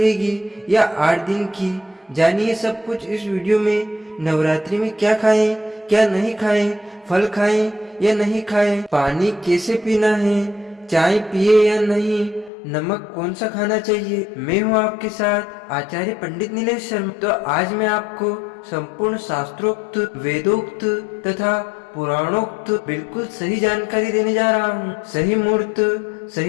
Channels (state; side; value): drops out; right; at 12.5 s